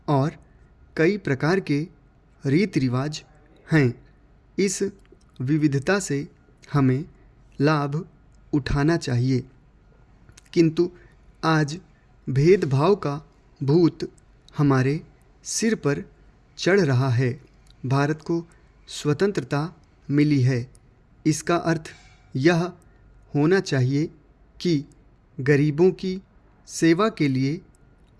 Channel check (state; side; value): identical; both; correlation 1.00